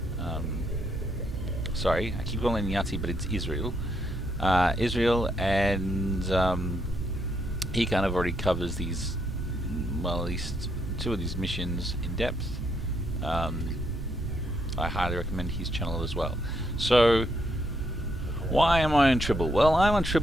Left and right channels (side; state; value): both; normal; correlation 0.76